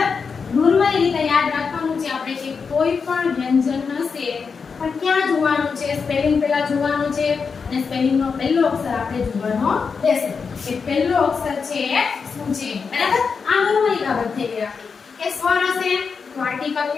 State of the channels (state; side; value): quieter; right; 5.5 dB